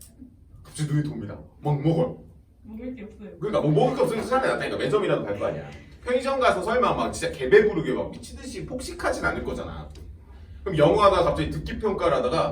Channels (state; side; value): identical; both; correlation 1.00